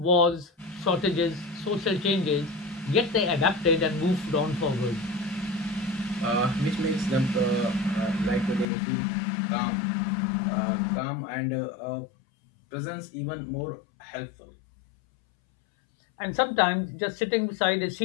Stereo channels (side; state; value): right; drops out; at 8.7 s